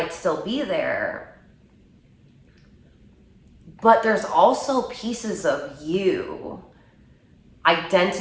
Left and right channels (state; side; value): identical; both; correlation 1.00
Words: still be there, but there's also pieces of you,